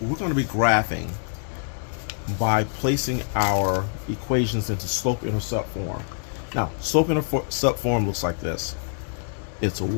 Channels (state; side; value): silent; right; digital silence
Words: going to be graphing by placing our equations into slope-intercept form. Now, slope-intercept form looks like this. It's